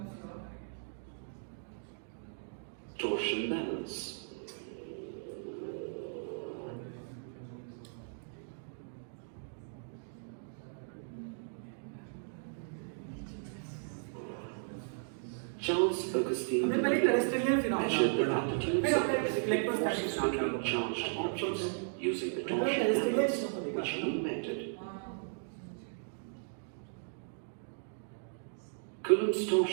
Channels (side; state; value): left; silent; digital silence